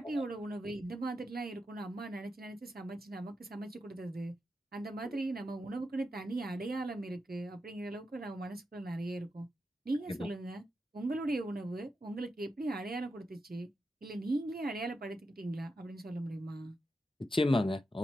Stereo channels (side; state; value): both; normal; correlation 0.87